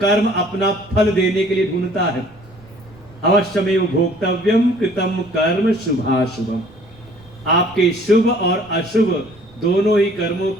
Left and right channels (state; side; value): noise; right; rumble, 26 dB below the sound